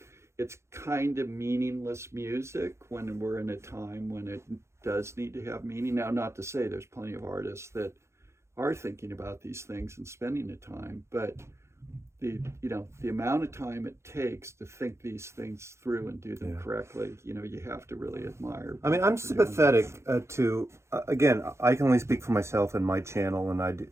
it's kind of meaningless music when we're in a time when it does need to have meaning. Now, not to say there's plenty of artists that are thinking about these things and spending the time, but the amount of time it takes to think these things through and do them correctly, you have to really admire. I mean, I'm sympathetic to again, I can only speak for myself and my channel, and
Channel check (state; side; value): late; left; 0.13 ms